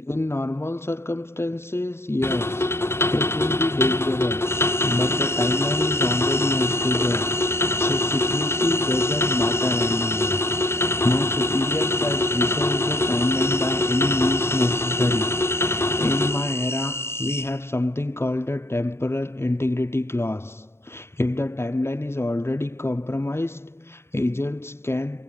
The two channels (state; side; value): late; right; 0.12 ms